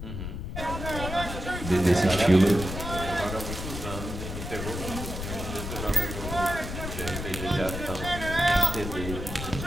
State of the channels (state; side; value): noise; left; rumble, 6 dB below the sound